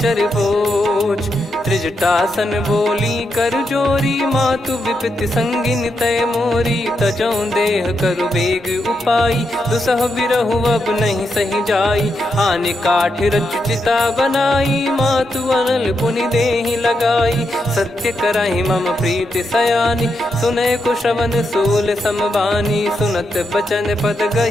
बोझ। त्रिजटासन बोली कर जोरी, मातु विपति संगिन तय मोरी। तजौ देह करु बेग उपाई, दुसह बिरहु अब नहीं सही जाई। आने काठ रचु चिता बनाई, मातु अनल पुनि देहि लगाई। सत्य करहि मम प्रीति सयानी, सुनय को श्रवण सूल समबानी। सुनत बचन पद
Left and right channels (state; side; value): normal; both; correlation 0.83